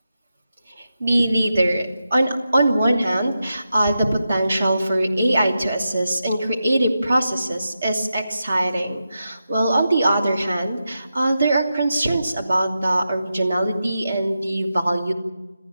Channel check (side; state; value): both; inverted; correlation -0.89